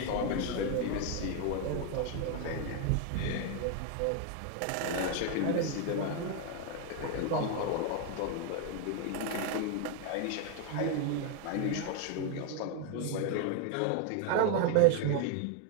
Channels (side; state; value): both; different; correlation 0.01